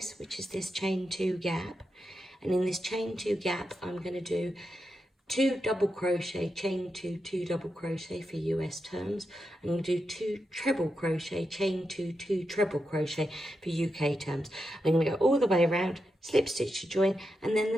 which is this chain 2 gap. And in this chain 2 gap, I'm going to do 2 double crochet, chain 2, 2 double crochet for US terms. I'm going to do 2 treble crochet, chain 2, 2 treble crochet for UK terms. I'm going to go all the way around, slip stitch to join, and then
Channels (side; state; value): both; normal; correlation 0.87